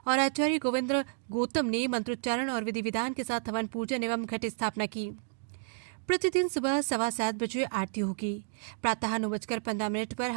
और आचार्य गोविंद गौतम ने मंत्रोच्चारण और विधि विधान के साथ हवन पूजन एवं घट स्थापना की। प्रतिदिन सुबह 7:15 बजे आरती होगी। प्रातः 9:15 पर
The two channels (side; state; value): left; silent; 57 dB below the other